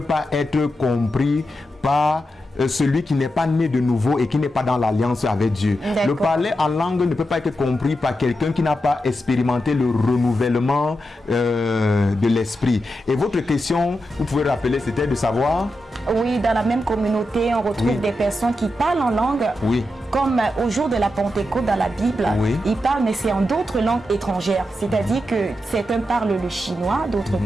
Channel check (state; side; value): normal; both; correlation 0.88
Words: pas être compris par celui qui n'est pas né de nouveau et qui n'est pas dans l'alliance avec Dieu. Le parler en langue ne peut pas être compris par quelqu'un qui n'a pas expérimenté le renouvellement de l'esprit. Et votre question, vous pouvez rappeler, c'était de savoir? Oui, dans la même communauté, on retrouve des personnes qui parlent en langue. Comme au jour de la Pentecôte dans la Bible, ils parlent, mais c'est en d'autres langues étrangères. C'est-à-dire que certains parlent le chinois, d'autres